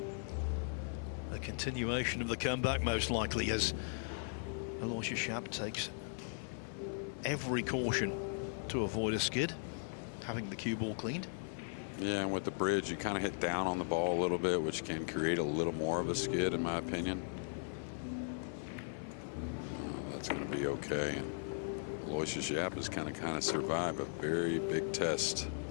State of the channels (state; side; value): silent; right; 52 dB below the other